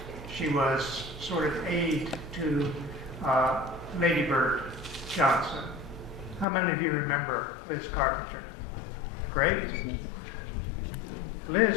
she was sort of aide to Lady Bird Johnson. How many of you remember Liz Carpenter? Great.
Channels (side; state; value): right; drops out; at 6.5 s